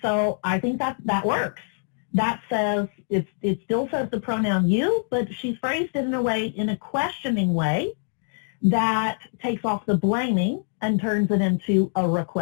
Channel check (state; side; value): silent; right; digital silence